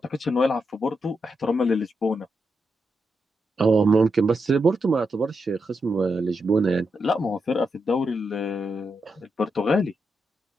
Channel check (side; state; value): both; normal; correlation 0.84